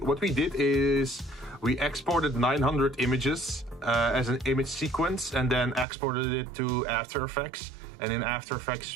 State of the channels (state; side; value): drops out; left; at 5.9 s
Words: What we did is we exported 900 images as an image sequence and then exported it to After Effects. And in After